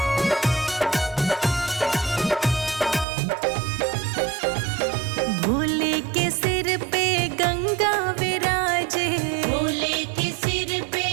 भोले के सिर पे गंगा विराजे, भोले के सिर पे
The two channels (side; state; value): left; drops out; at 3.1 s